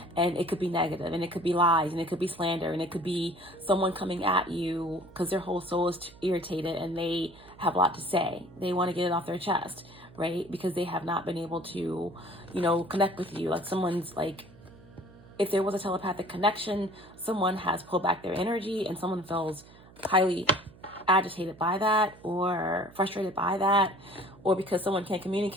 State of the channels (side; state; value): right; noise; hum, 23 dB below the sound